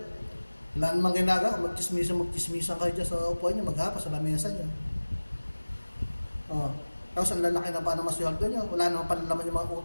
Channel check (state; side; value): inverted; both; correlation -1.00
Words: Wala namang ginagawa, magchismisan kayo dyan sa upuan nyo, maghapa sa lamesa nyo. Tapos ang lalaki na pa ng masweldo nyo, wala namang panalaman yung mga